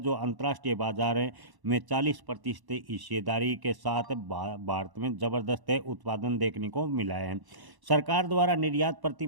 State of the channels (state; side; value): late; left; 1.0 ms